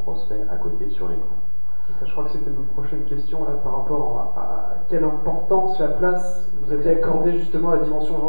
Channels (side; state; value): both; inverted; correlation -1.00